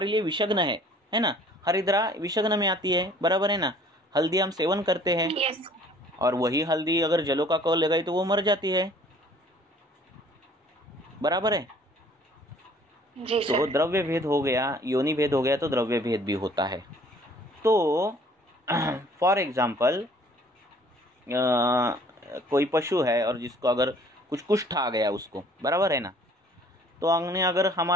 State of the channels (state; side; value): normal; both; correlation 0.55